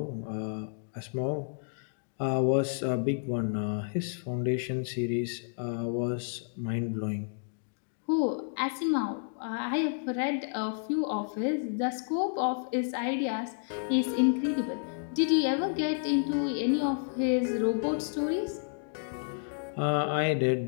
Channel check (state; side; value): silent; right; digital silence